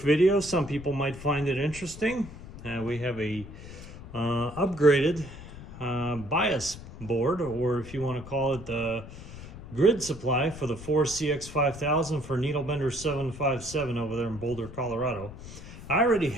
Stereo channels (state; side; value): noise; left; rumble, 14 dB below the sound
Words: video. Some people might find it interesting. We have a upgraded bias board, or if you want to call it the grid supply for the 4CX5000 for NB757 over there in Boulder, Colorado. I already